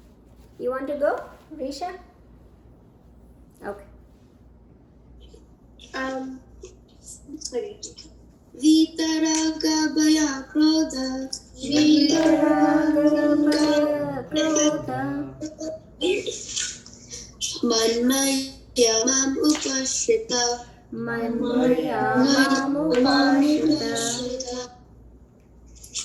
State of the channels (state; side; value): identical; both; correlation 1.00